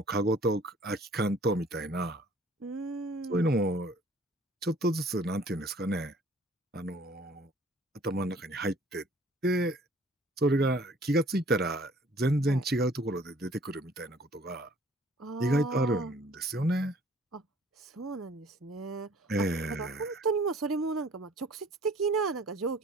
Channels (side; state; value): both; normal; correlation 0.55